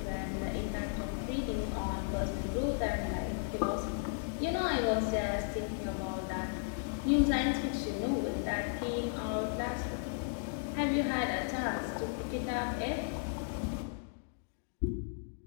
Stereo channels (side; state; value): right; silent; digital silence